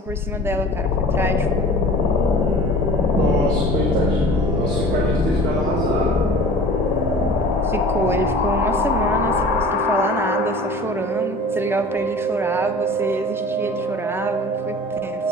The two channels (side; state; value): both; normal; correlation 0.43